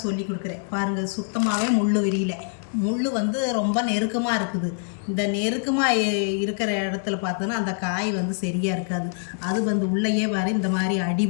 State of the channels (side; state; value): right; silent; digital silence